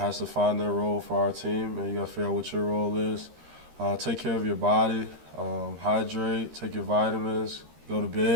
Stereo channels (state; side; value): late; left; 13 ms